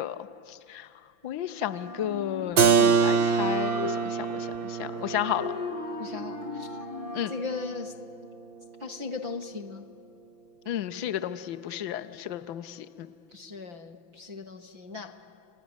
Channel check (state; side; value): late; left; 5.9 ms